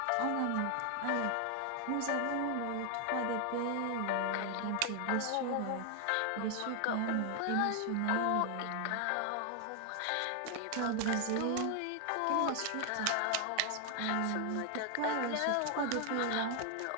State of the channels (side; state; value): both; different; correlation 0.00